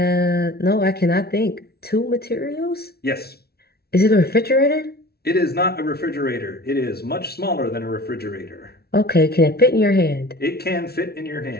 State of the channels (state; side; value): late; right; 0.45 ms